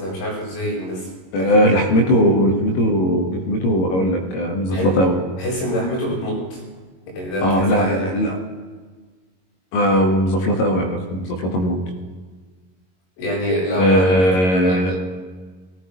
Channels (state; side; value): late; right; 22 ms